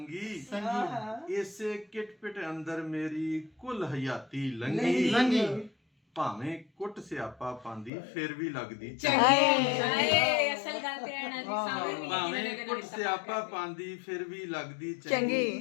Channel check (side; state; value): right; drops out; at 7.9 s